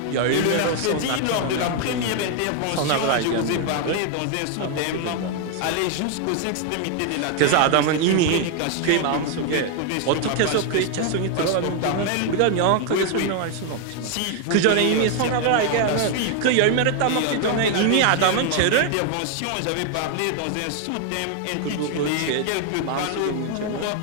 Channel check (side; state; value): both; different; correlation 0.00